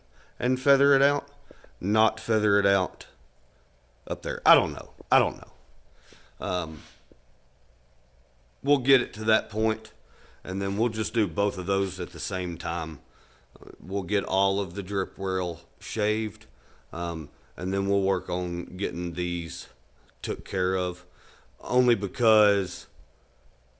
and feather it out, not feather it out up there. I don't know. We'll get it to that point, and then we'll just do both of those at the same time. We'll get all of the drip rail shaved, and then we'll work on getting these took care of, only because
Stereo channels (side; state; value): both; identical; correlation 1.00